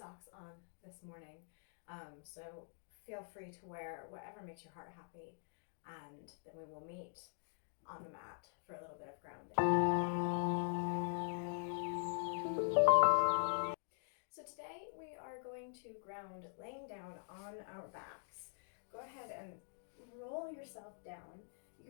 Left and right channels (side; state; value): right; silent; digital silence